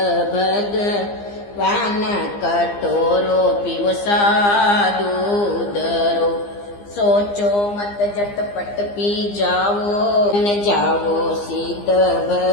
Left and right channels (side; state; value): right; late; 15 ms